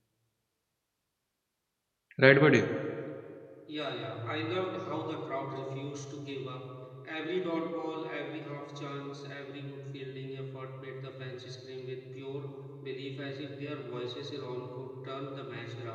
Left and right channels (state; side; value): identical; both; correlation 1.00